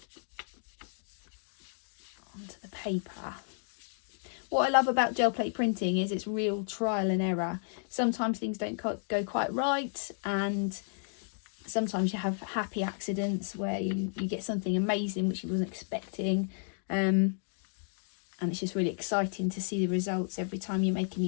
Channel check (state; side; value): silent; right; digital silence